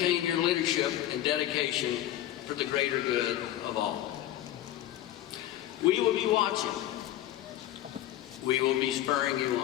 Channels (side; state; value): right; quieter; 13.1 dB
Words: your leadership and dedication for the greater good of all. We will be watching. We will be spurring you